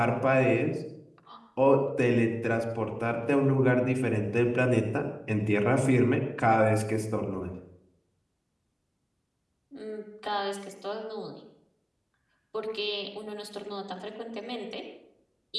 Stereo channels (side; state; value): both; identical; correlation 1.00